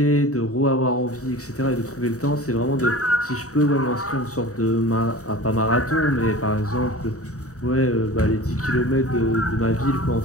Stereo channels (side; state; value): right; late; 0.65 ms